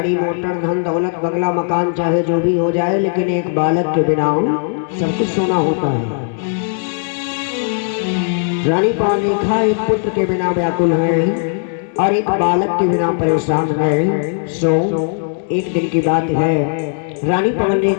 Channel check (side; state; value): right; silent; 68 dB below the other